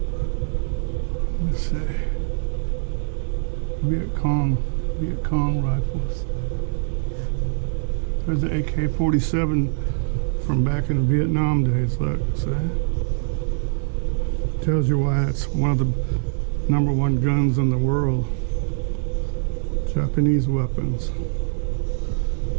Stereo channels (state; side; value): silent; left; 62 dB below the other